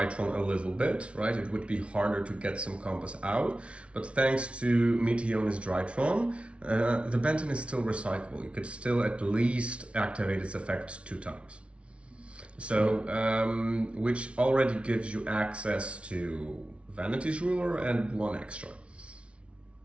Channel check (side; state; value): left; late; 0.061 ms